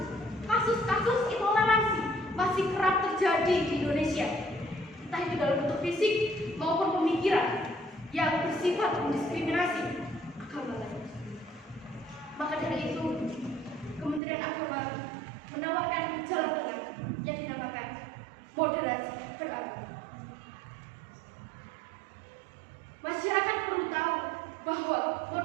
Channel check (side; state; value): left; drops out; at 14.2 s